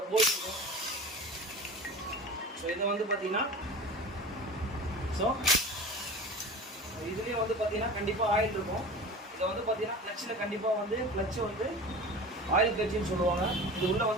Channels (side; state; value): both; normal; correlation 0.35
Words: போல்ட் இருக்கும். ஸோ இதை வந்து பார்த்தீங்கன்னா ஸோ இதுலேயே வந்து பார்த்தீங்கன்னா கண்டிப்பாக ஆயில் இருக்கும். இதை வந்து பார்த்தீங்கன்னா கிளச்சில் கண்டிப்பாக வந்து கிளச்சு வந்து ஆயில் கிளச்சுன்னு சொல்லுவாங்க. இது உள்ளே